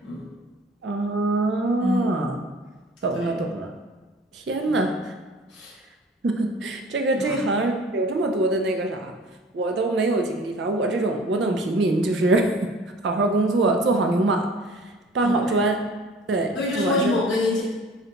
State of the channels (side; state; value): both; normal; correlation 0.47